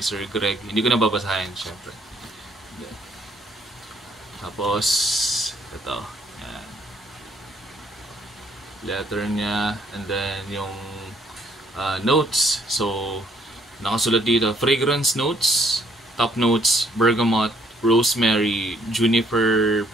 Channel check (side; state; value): both; normal; correlation 0.67